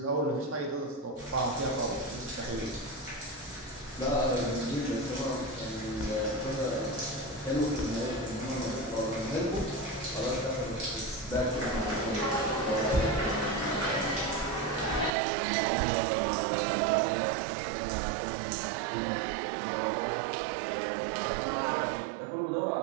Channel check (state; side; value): drops out; left; at 15.1 s